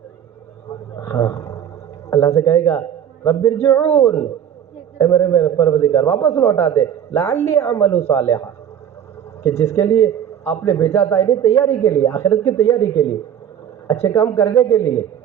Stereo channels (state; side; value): quieter; left; 9.4 dB